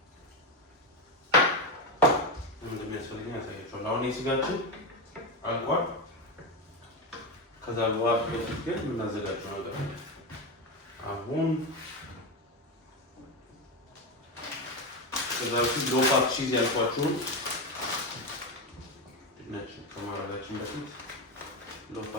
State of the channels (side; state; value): both; normal; correlation 0.13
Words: እንደሚያስፈልግ ያሳያችኋል። አሁን የስጋችን አልቋል። ከዛ በኋላ በፊት ግን የምናዘጋጀው ነገር አለ። አሁን ከዛ በፊት ሎ ፋት ቺዝ ያልኳችሁን ድንች ከማድረጋችን በፊት ሎ